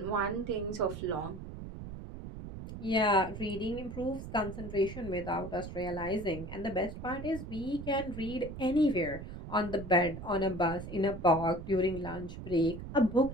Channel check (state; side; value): noise; right; rumble, 10 dB below the sound